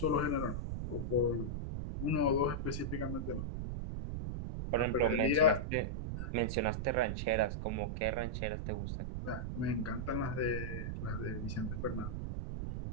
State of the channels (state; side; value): noise; right; rumble, 3 dB below the sound